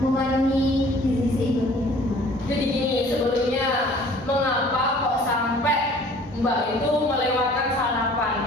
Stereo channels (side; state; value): both; normal; correlation 0.52